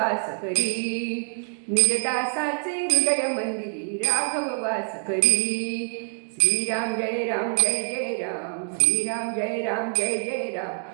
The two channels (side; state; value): left; silent; 56 dB below the other